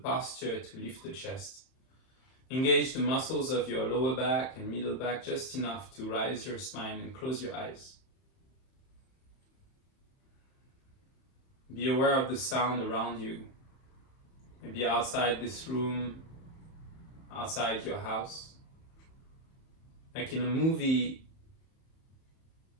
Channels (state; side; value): late; right; 31 ms